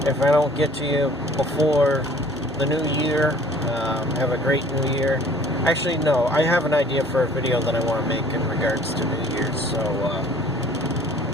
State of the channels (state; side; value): normal; both; correlation 0.53